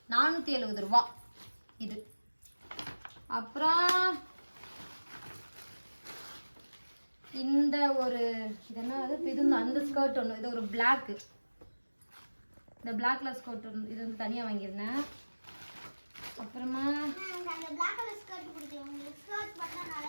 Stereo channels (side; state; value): both; inverted; correlation -1.00